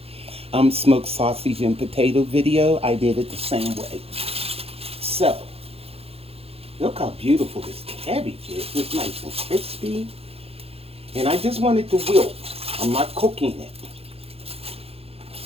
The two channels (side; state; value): left; late; 0.29 ms